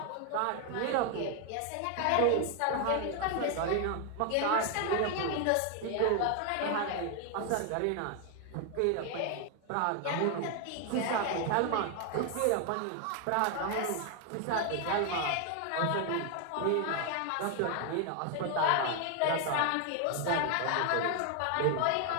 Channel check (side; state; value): both; different; correlation 0.01